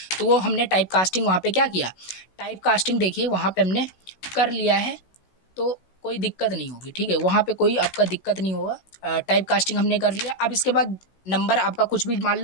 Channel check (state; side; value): late; right; 16 ms